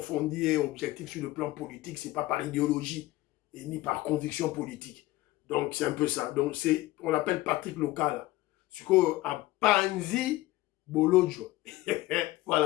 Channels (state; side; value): quieter; right; 17.8 dB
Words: et objective sur le plan politique. Ce n'est pas par idéologie et ni par conviction politique. Donc, c'est un peu ça. Donc, on l'appelle Patrick Local. Ce qu'on a Panzi Bolodjo.